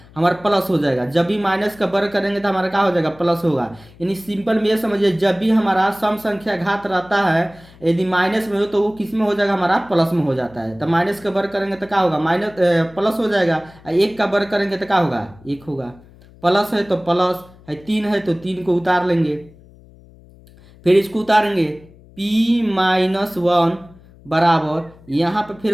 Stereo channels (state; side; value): noise; left; hum, 24 dB below the sound